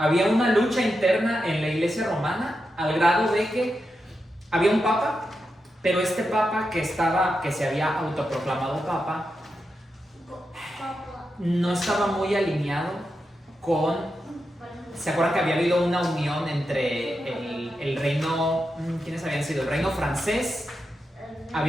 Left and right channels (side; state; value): both; normal; correlation 0.88